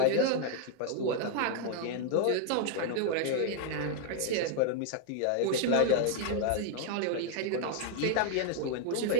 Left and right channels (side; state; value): both; different; correlation 0.00